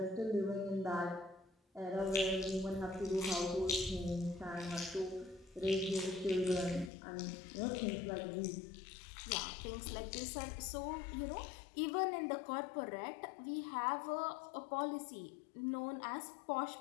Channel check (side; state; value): right; drops out; at 6.9 s